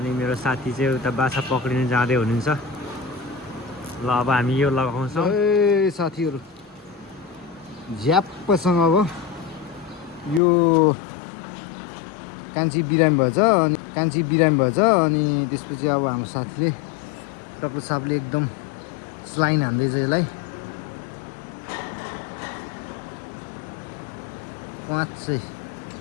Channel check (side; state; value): right; drops out; at 10.4 s